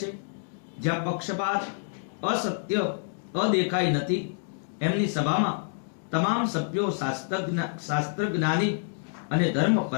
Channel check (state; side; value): silent; right; digital silence